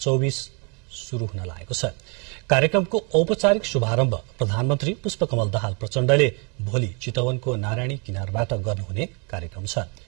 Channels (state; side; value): quieter; left; 33.2 dB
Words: शुरू हुन लागेको छ। कार्यक्रमको औपचारिक शुभारम्भ प्रधानमन्त्री पुष्पकमल दाहाल प्रचण्डले भोलि चितवनको नारायणी किनारबाट गर्नुहुने कार्यक्रम छ।